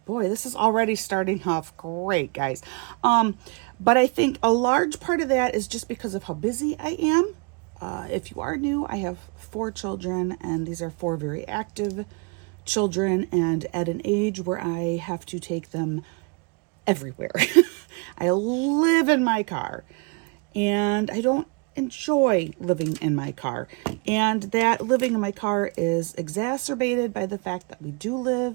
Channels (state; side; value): quieter; left; 32.8 dB